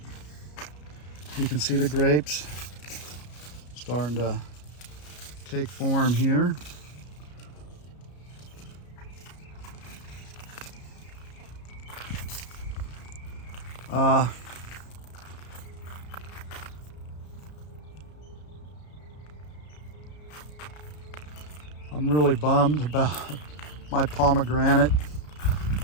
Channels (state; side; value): late; right; 33 ms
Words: You can see the grapes starting to take form here. I'm really bummed about my pomegranate.